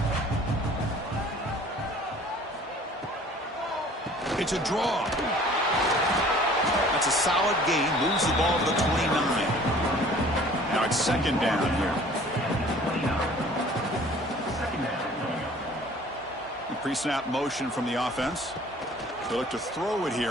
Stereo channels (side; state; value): both; normal; correlation 0.51